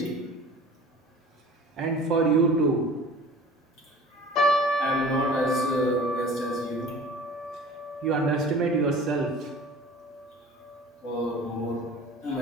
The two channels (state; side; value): normal; both; correlation 0.43